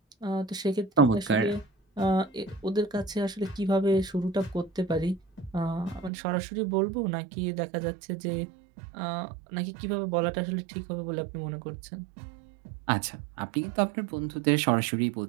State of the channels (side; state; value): left; drops out; at 6.1 s